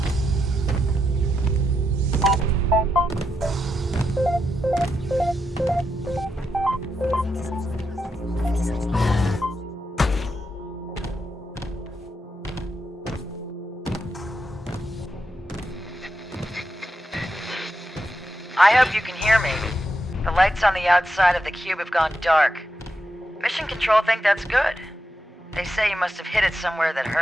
I hope you can hear me. The lights on the outside of the cube have gone dark. Mission Control think that's good. They say you must have hit it somewhere that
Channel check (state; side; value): normal; both; correlation 0.84